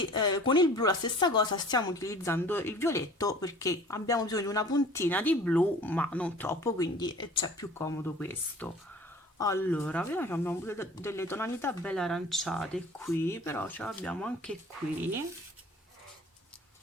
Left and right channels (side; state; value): both; normal; correlation 0.47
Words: con il blu la stessa cosa, stiamo utilizzando il violetto perché abbiamo bisogno di una puntina di blu ma non troppo, quindi c'è più comodo questo. Allora, vediamo che abbiamo delle tonalità belle aranciate qui, però ce l'abbiamo anche qui.